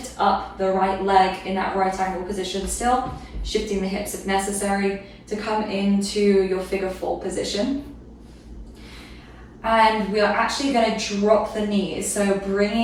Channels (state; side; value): identical; both; correlation 1.00